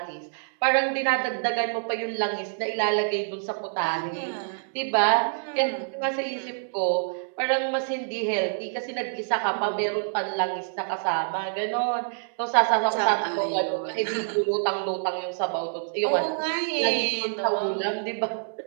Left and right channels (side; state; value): left; silent; digital silence